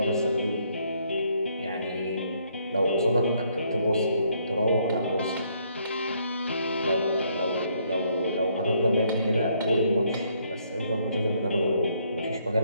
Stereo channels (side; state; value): both; inverted; correlation -0.70